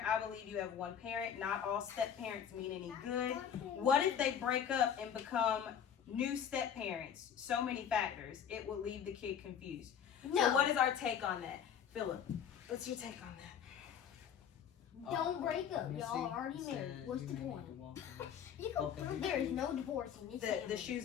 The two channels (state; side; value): quieter; right; 8.4 dB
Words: I believe you have one parent. Not all step parents mean any good. What if they break up and become new step parents? So many factors. It will leave the kid confused. No. So what is our take on that? Philip, what's your take on that? don't break up. Let me Y'all see. already It married. says What's you the may need point? to walk in There is no divorcing. It's The family.